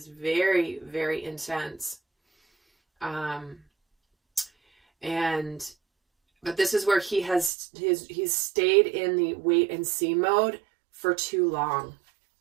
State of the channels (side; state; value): left; drops out; at 7.5 s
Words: very, very intense. But this is where he's stayed in the wait and see mode for too long.